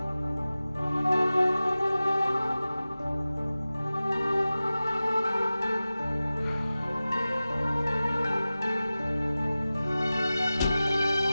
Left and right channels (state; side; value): inverted; both; correlation -0.96